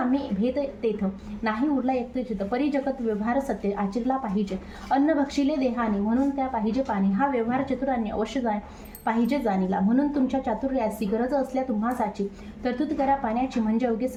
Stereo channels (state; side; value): identical; both; correlation 1.00